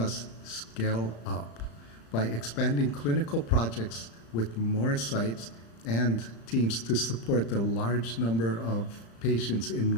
scale up by expanding clinical projects with more sites and teams to support the large number of patients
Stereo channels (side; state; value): right; late; 35 ms